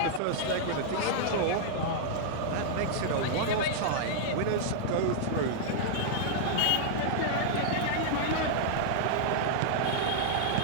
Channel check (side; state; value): both; different; correlation -0.01